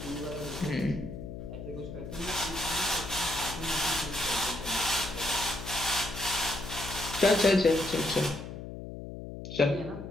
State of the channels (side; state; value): left; noise; hum, 9 dB below the sound